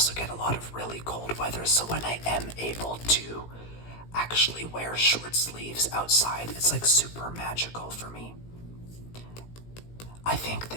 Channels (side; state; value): right; late; 17 ms